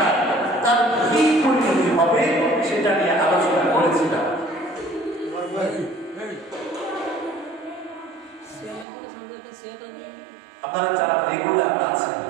তার কি পরিণতি হবে সেটা নিয়ে আলোচনা করেছিলাম। আপনারা যারা রেগুলার আছেন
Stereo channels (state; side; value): drops out; left; at 8.8 s